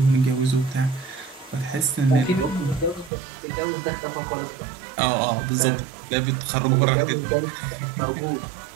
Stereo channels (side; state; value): left; drops out; at 3.1 s